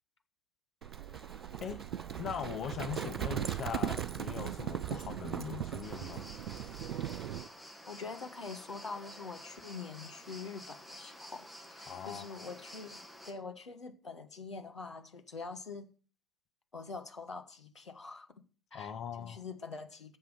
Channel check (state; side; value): normal; both; correlation 0.31